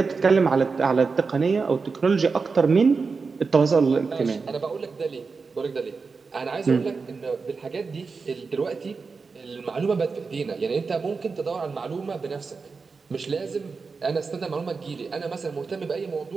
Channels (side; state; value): left; quieter; 4.7 dB